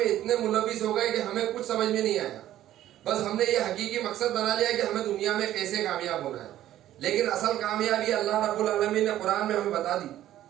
اتنے ملوث ہو گئے کہ ہمیں کچھ سمجھ میں نہیں آیا. بس ہم نے یہ حقیقی مقصد بنا لیا کہ ہمیں دنیا میں کیسے کامیاب ہونا ہے. لیکن اصل کامیابی اللہ رب العالمین نے قرآن میں ہمیں بتا دی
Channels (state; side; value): quieter; left; 13.0 dB